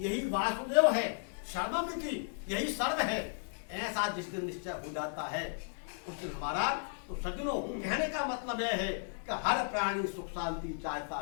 वासुदेव है। सर्वमिति, यही सर्व है। ऐसा जिस दिन निश्चय हो जाता है उस दिन हमारा, तो सज्जनों कहने का मतलब यह है कि हर प्राणी सुख शांति चाहता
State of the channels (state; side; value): silent; right; 55 dB below the other